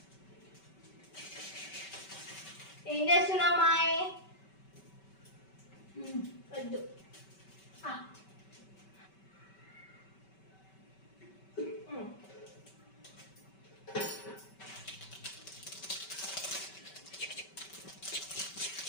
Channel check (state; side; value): late; right; 5.2 ms